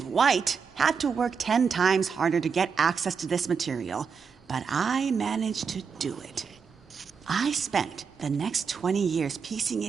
white, had to work 10 times harder to get access to this material, but I managed to do it. I spent the next 20 years piecing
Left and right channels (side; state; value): left; quieter; 5.9 dB